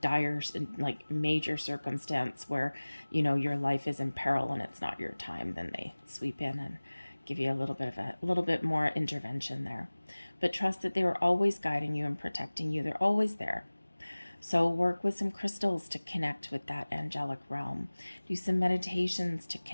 dire, like major circumstance where your life is in peril and it's not your time. Then they sweep in and give you a little bit more intervention there. But trust that they are always guiding you and protecting you. They're always there. So work with some crystals to connect with that angelic realm. Do some meditations to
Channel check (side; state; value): both; inverted; correlation -1.00